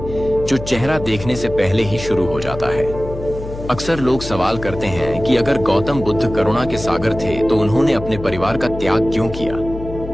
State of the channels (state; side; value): noise; left; hum, 11 dB below the sound